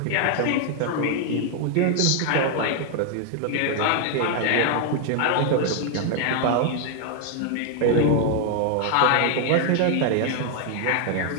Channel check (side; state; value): both; different; correlation 0.00